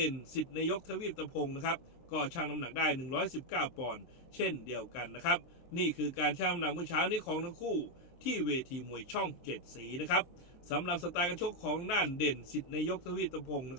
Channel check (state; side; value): late; right; 23 ms